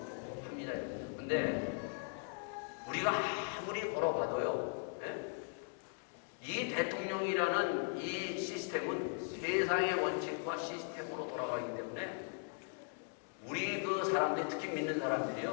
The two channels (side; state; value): right; silent; 52 dB below the other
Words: 합니다. 근데 우리가 아무리 걸어봐도요, 이 대통령이라는 이 시스템은 세상의 원칙과 시스템으로 돌아가기 때문에 우리 그 사람들, 특히 믿는